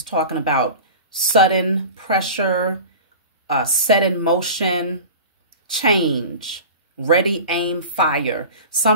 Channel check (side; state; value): both; inverted; correlation -0.34